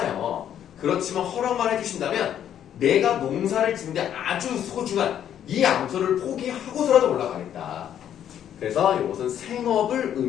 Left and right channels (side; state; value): right; quieter; 10.0 dB